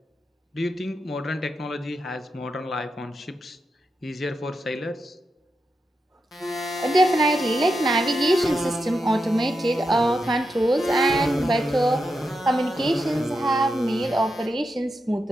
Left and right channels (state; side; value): normal; both; correlation 0.86